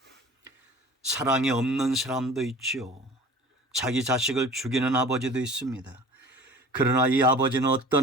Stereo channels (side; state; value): both; normal; correlation 0.43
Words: 사랑이 없는 사람도 있죠. 자기 자식을 죽이는 아버지도 있습니다. 그러나 이 아버지는